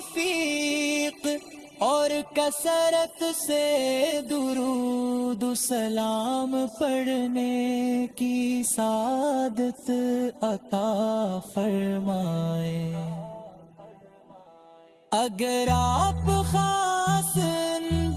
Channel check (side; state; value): both; identical; correlation 1.00